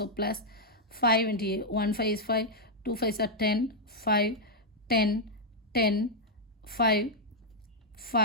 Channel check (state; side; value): normal; both; correlation -0.03